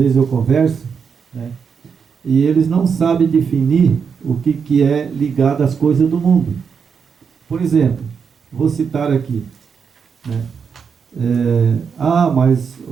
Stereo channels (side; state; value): left; quieter; 6.3 dB